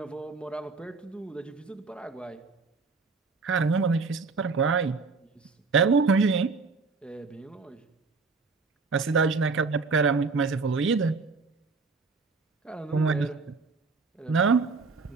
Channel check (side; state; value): left; quieter; 4.4 dB